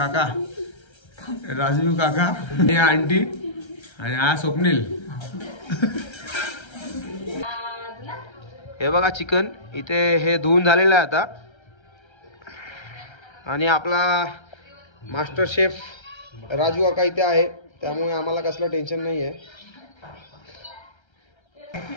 राजू काका, हे आंटी आणि हा स्वप्नील. हे बघा चिकन इथे हे धुवून झालेलं आहे आता. आणि आपला मास्टर शेफ राजू काका इथे आहे, त्यामुळे आम्हाला कसलं टेन्शन नाही आहे.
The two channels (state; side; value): late; right; 1.3 ms